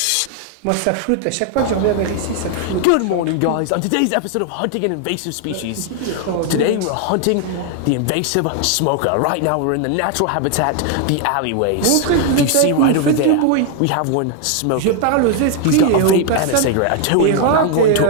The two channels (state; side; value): different; both; correlation 0.00